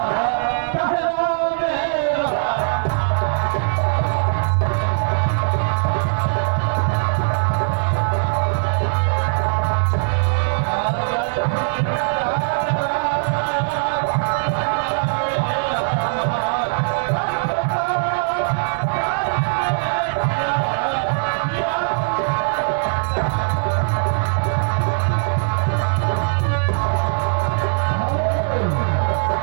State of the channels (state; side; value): silent; left; 66 dB below the other